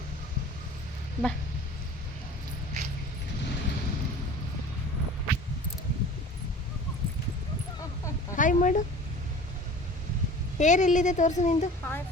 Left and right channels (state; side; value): normal; both; correlation 0.42